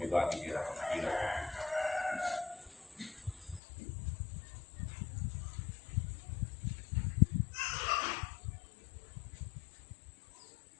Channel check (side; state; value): right; drops out; at 3.6 s